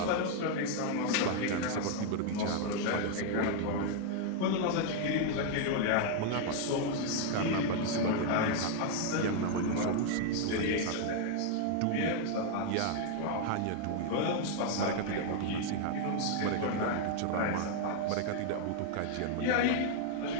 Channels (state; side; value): different; both; correlation 0.00